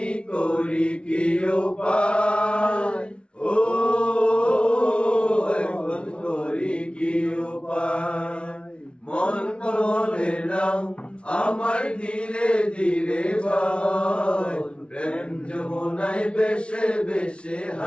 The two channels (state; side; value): late; right; 0.059 ms